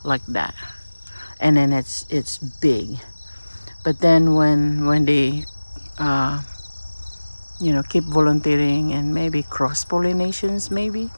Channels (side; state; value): both; inverted; correlation -1.00